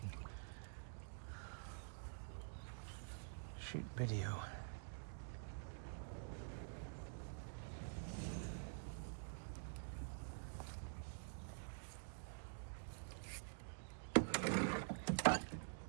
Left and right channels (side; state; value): left; silent; digital silence